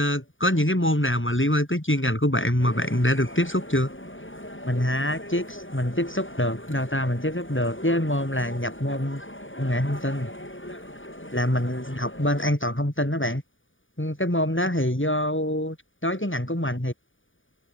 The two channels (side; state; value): right; late; 0.57 ms